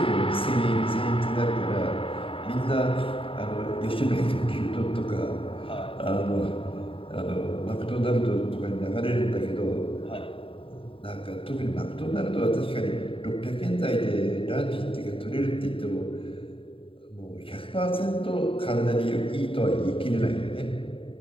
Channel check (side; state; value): right; late; 0.26 ms